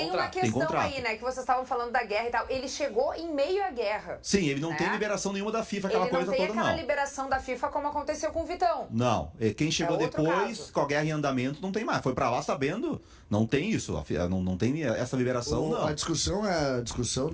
uma contrato. Tem questão contrato. aí, né, que vocês estavam falando da guerra e tal. Ele chegou em meio à guerra. Sim, ele não Né? tem liberação nenhuma da FIFA, aquela Ele não coisa tem toda, aquela não. liberação da FIFA como aconteceu com o Vitão. Não, quem chegou É outro depois, caso. com a guerra em andamento, não tem mais. Foi pra lá sabendo, não tem isso. Não tem essa liberação, não. A discussão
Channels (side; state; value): both; identical; correlation 1.00